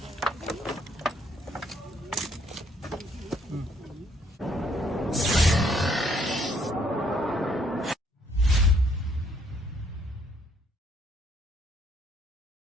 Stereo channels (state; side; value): normal; both; correlation 0.67